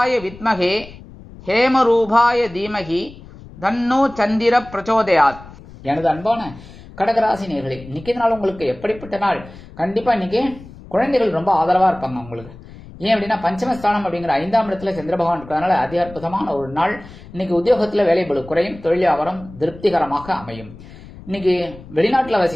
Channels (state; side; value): noise; left; rumble, 18 dB below the sound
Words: வித்மகே ஹேமரூபாய தீமகி தன்னோ சந்திர பிரச்சோதயாத். எனது அன்பான கடகராசி நேயர்களே, இன்னைக்கு நாள் உங்களுக்கு எப்படிப்பட்ட நாள்? கண்டிப்பா இன்னைக்கு குழந்தைகள் ரொம்ப ஆதரவா இருப்பாங்க உங்களுக்கு. ஏன் அப்படின்னா பஞ்சமஸ்தானம் அப்படிங்கிற 5ஆம் இடத்துல சந்திர பகவான் இருக்கிறதுனால அதி அற்புதமான ஒரு நாள். இன்னைக்கு உத்தியோகத்துல வேலை பளு குறையும். தொழில் வியாபாரம் திருப்திகரமாக அமையும். இன்னைக்கு வெளிநாட்டுல